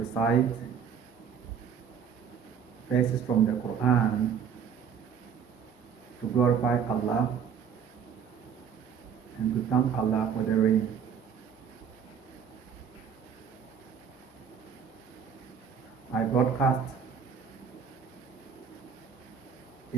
verses from the Qur'an to glorify Allah and to thank Allah for the rain. My broadcast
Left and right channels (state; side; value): quieter; left; 7.4 dB